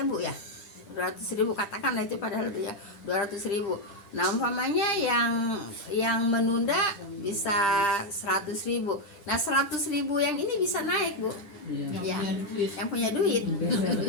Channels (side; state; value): right; late; 10 ms